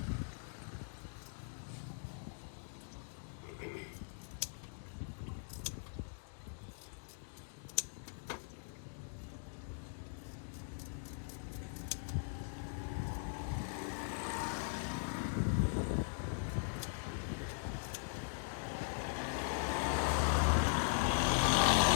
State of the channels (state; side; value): silent; right; digital silence